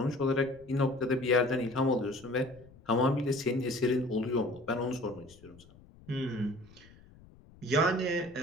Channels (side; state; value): left; noise; rumble, 24 dB below the sound